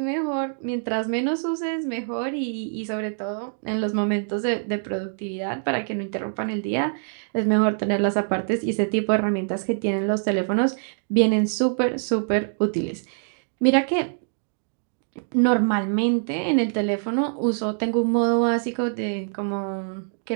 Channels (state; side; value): silent; left; digital silence